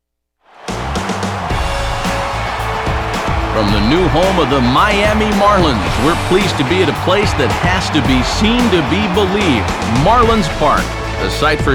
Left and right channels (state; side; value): identical; both; correlation 1.00